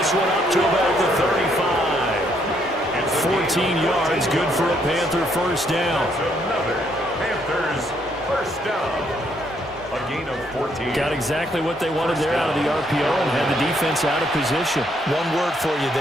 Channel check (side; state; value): both; normal; correlation 0.71